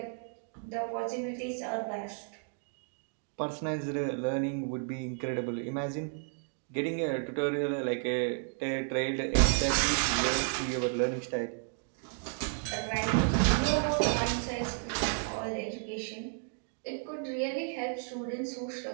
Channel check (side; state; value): left; silent; 56 dB below the other